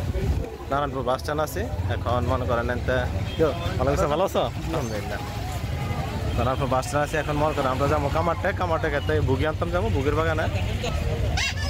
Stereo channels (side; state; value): both; identical; correlation 1.00